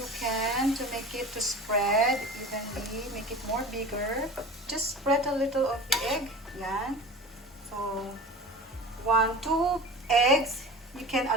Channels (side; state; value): both; normal; correlation 0.36